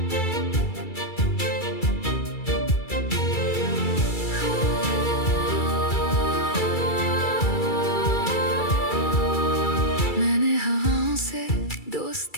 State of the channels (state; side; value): late; right; 2.3 ms